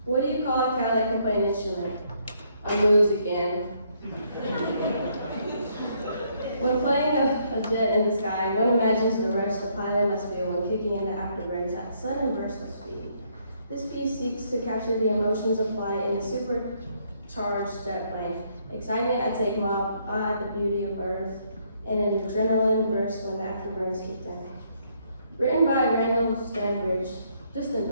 What do you call a cow that can play an instrument? A moose again. When playing a jet in the sky, one imagines the rush the pilot must feel when kicking in the afterburn's at sudden burst of speed. This piece seeks to capture the emotions of flight in a supercharged jet plane. Excitement at takeoff, awe at the beauty of Earth, and an adrenaline burst when the afterburn is kicked in. Written by Randall Stanbridge, just in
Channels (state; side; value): inverted; both; correlation -0.70